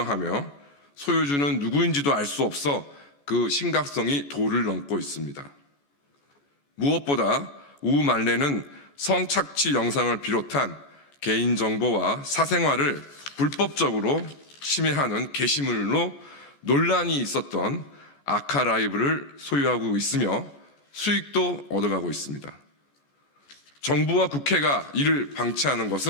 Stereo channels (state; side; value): late; right; 14 ms